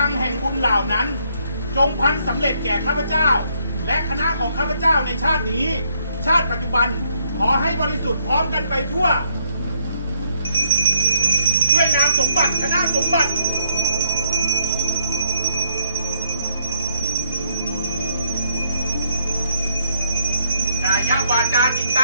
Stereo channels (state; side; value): inverted; both; correlation -0.73